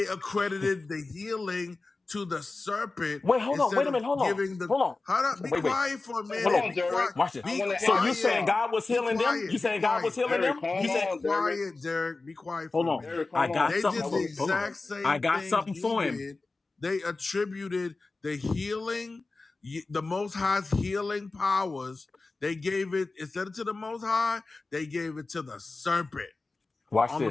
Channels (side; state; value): right; quieter; 3.5 dB